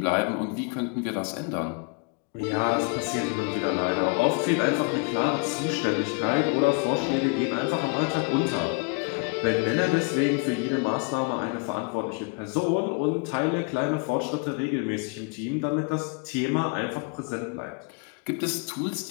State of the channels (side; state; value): right; quieter; 33.4 dB